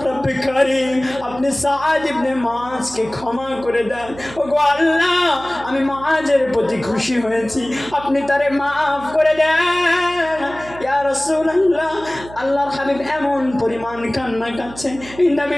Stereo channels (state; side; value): noise; right; hum, 17 dB below the sound